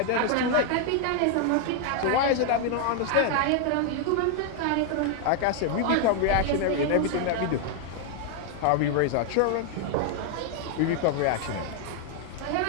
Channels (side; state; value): both; different; correlation 0.00